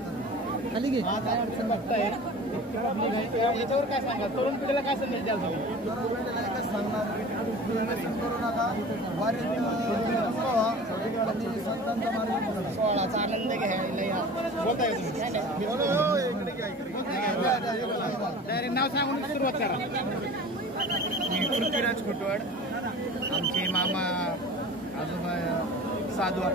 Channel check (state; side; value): normal; both; correlation 0.39